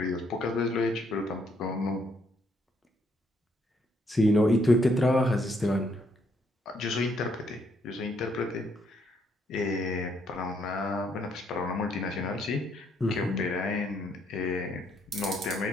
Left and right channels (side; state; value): both; normal; correlation 0.71